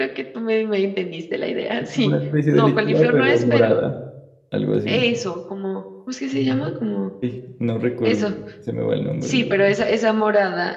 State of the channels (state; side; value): identical; both; correlation 1.00